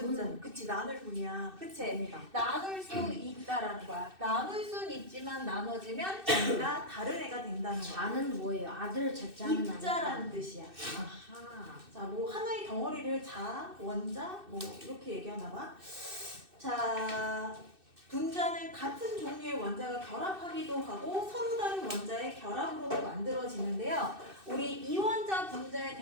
분자? 그치, 나눌 분이야. 그치? 됩니다. 나눌 수 있다라는 거야. 나눌 수는 있지만 나눠지면 전가 다른 애가 된다는 거야. 자는 뭐예요? 아들 자자는 입자라는 뜻이야. 아하. 자, 뭐 하나의 덩어리를 자, 원자, 뭐 이렇게 얘기하나 봐. 자, 분자는 같은 종류의 원자가 결합하기도 하고 서로 다른 원자의 결합으로도 만들어지는데요. 우리 이원자 분자의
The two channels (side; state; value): left; late; 2.6 ms